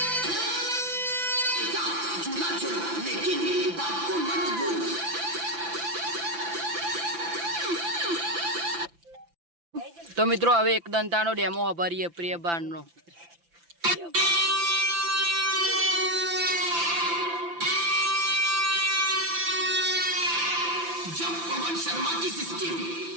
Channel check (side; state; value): left; late; 5.9 ms